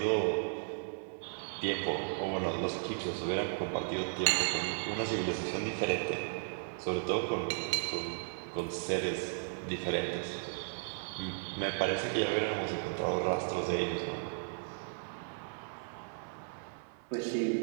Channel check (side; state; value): left; silent; 54 dB below the other